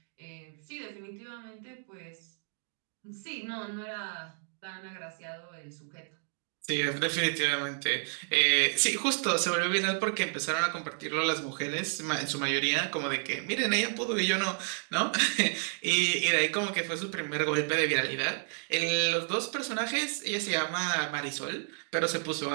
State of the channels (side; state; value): left; silent; 57 dB below the other